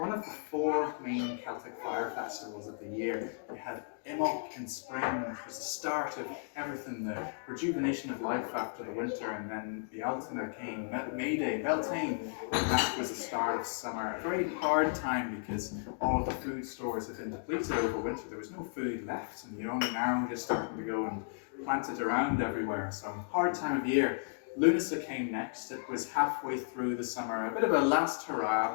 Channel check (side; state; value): right; silent; digital silence